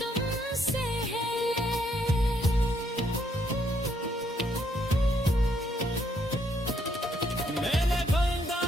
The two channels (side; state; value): both; normal; correlation 0.72